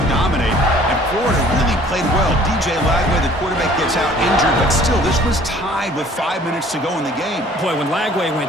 dominate, and Florida really played well. DJ Lagway, the quarterback, gets out injured, but still, this was tied with 5 minutes to go in the game. Boy, when Lagway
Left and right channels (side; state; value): both; normal; correlation 0.54